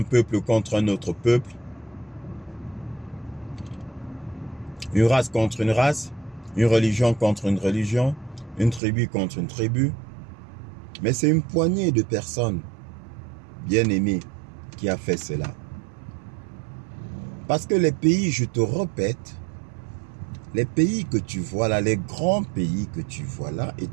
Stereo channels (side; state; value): left; drops out; at 8.8 s